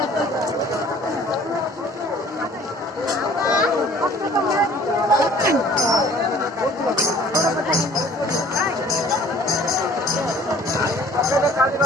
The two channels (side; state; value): both; normal; correlation 0.52